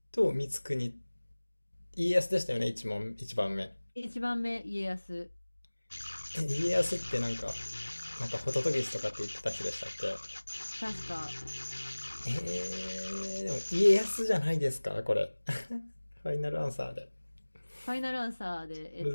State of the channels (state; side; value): inverted; both; correlation -1.00